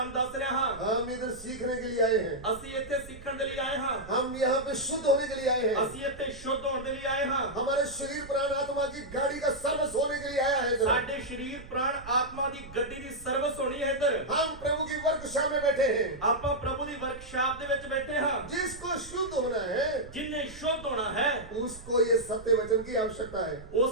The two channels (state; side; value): noise; right; rumble, 17 dB below the sound